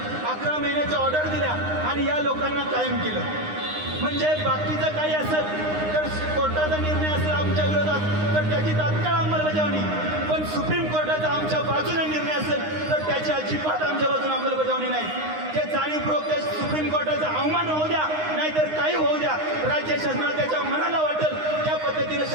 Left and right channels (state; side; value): late; left; 9.7 ms